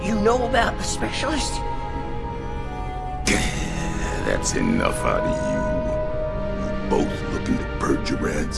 you know about the specialist? That's enough out of you. You both looking to purge your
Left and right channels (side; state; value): both; identical; correlation 1.00